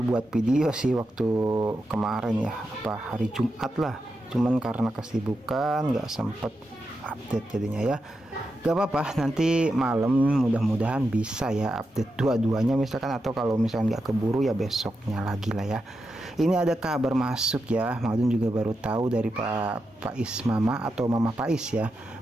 buat video sih waktu kemarin ya, hari Jumat lah. Cuman karena kesibukan nggak sempet update jadinya ya. Gak apa-apa, nanti malam mudah-mudahan bisa ya update dua-duanya misalkan, atau kalau misalkan nggak keburu ya besoknya lagi lah ya. Ini ada kabar masuk ya, Mang Adun juga baru tahu dari Pak Ismama atau Mama Pais ya.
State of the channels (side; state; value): both; normal; correlation 0.87